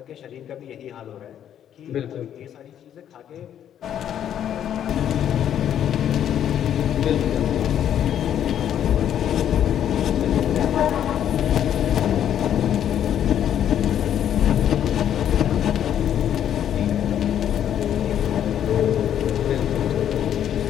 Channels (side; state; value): right; quieter; 10.0 dB